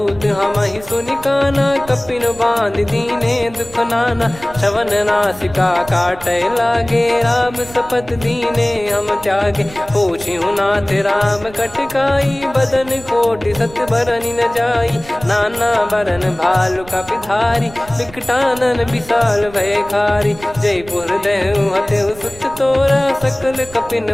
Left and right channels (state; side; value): noise; right; rumble, 19 dB below the sound